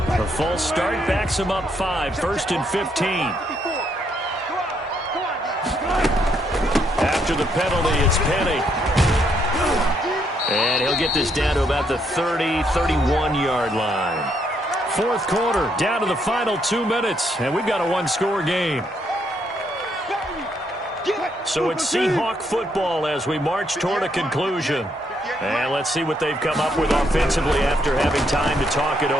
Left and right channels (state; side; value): normal; both; correlation 0.74